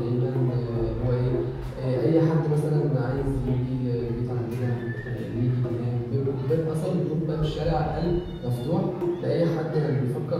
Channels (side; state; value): both; identical; correlation 1.00